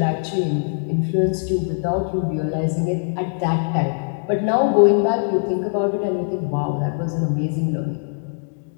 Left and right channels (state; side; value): silent; right; 65 dB below the other